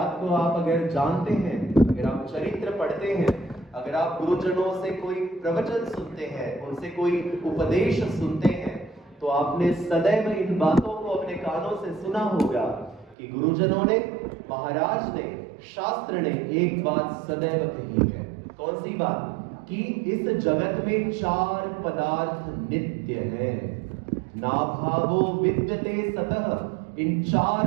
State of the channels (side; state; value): left; drops out; at 13.2 s